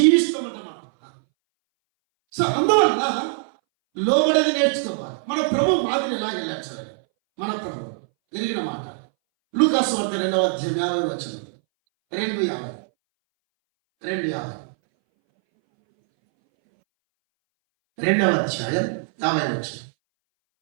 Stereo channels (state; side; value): silent; left; 62 dB below the other